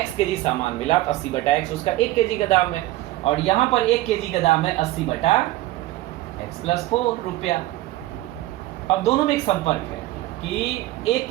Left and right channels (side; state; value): left; quieter; 16.9 dB